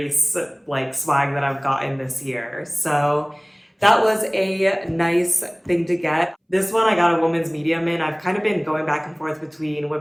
swag that I've gotten this year. So that was a nice thing to get. This one I got a women's medium in. I've kind of been going back and forth between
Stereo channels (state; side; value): identical; both; correlation 1.00